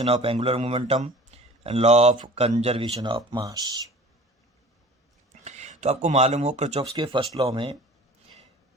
of angular momentum and law of conservation of mass. तो आपको मालूम हो Kirchhoff's के first law में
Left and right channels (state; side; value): normal; both; correlation 0.43